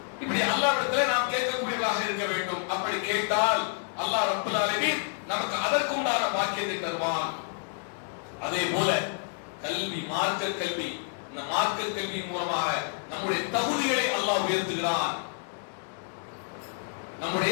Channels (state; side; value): silent; right; 59 dB below the other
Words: இப்படி அல்லாஹ்விடத்தில் நாம் கேட்கக்கூடியவர்களாக இருக்க வேண்டும். அப்படி கேட்டால் அல்லாஹ் ரப்பல் ஆலமீன் நமக்கு அதற்குண்டான பாக்கியத்தை தருவான். அதே போல கல்வி, மார்க்க கல்வி, இந்த மார்க்க கல்வியின் மூலமாக நம்முடைய தகுதிகளை அல்லாஹ் உயர்த்துகிறான்,